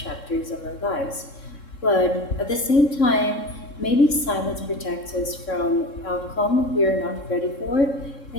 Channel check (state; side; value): late; right; 3.7 ms